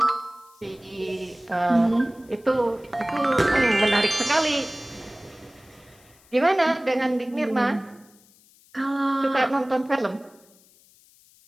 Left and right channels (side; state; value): left; noise; hiss, 29 dB below the sound